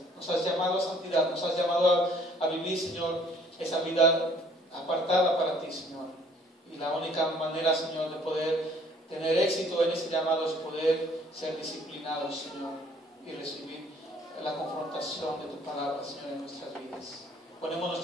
Nos has llamado a santidad, nos has llamado a vivir, Señor, esa vida apartada para ti, Señor. Y la única manera, Señor, de poder tener éxito en ese llamado es poder ser disciplinados, Señor, y recibir la confrontación de tu palabra, Señor, en nuestras vidas. Ponemos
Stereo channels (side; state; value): both; normal; correlation 0.59